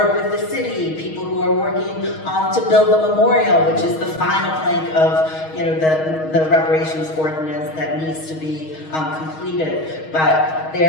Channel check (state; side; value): late; right; 6.3 ms